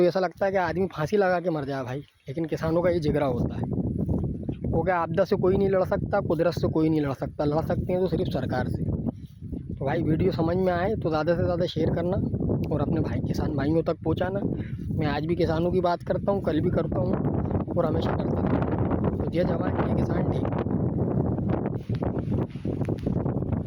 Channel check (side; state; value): both; identical; correlation 1.00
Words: ऐसा लगता है कि आदमी फांसी लगा के मर जाए भाई। लेकिन किसानों का ये जिगरा होता है। वो क्या आपदा से कोई नहीं लड़ सकता, कुदरत से कोई नहीं लड़ सकता, लड़ सकते हैं तो सिर्फ सरकार से। तो भाई वीडियो समझ में आए तो ज़्यादा से ज़्यादा शेयर करना और अपने भाई किसान भाइयों तक पहुंचाना। मैं आज भी किसानों की बात करता हूं, कल भी करता हूं और हमेशा करता रहूँगा। तो जय जवान जय किसान, ठीक।